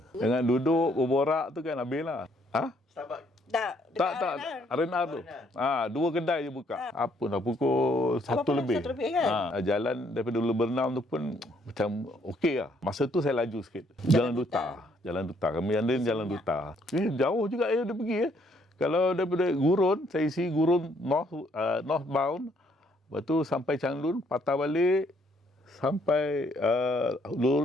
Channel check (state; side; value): normal; both; correlation 0.68